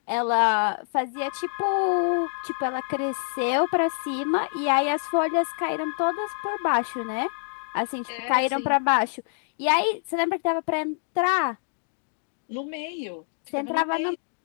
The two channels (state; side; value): silent; right; digital silence